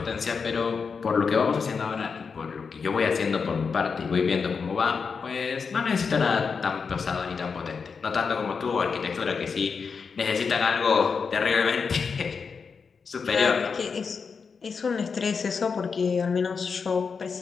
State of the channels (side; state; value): right; quieter; 5.5 dB